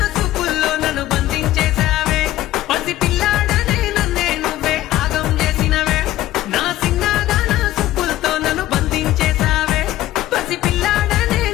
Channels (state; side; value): quieter; right; 15.0 dB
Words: చూపుల్లో నన్ను బంధించేశావే పసి పిల్లాడనే నన్నే నువ్వే ఆగం చేసినవే నా సిన్నదాన చూపులతో నన్ను బంధించేశావే పసి పిల్లాడనే